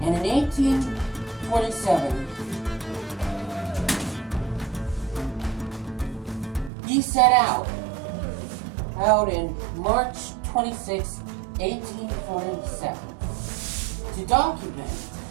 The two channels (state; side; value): drops out; left; at 6.7 s